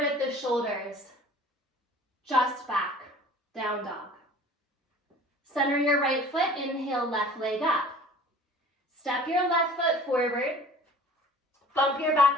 at the shoulders. Just back, down dog. Center your right foot, inhale, left leg up. Step your left foot forward. Bump your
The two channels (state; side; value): normal; both; correlation 0.46